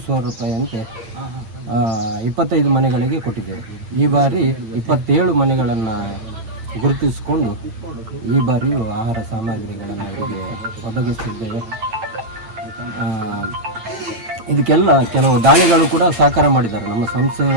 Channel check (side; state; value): left; late; 9.0 ms